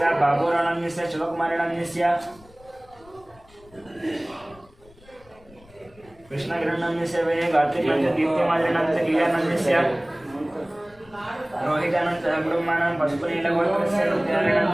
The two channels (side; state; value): left; noise; rumble, 26 dB below the sound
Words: బాబూరానందస్య శివకుమారినందస్య कृष्णगिरनंदस्य वे गात्रिकंच दीप्तिमादिनंदस्य कीर्तनंदस्य रोहितानंद ब्रह्मानं पशुपनीलगोत्रस्य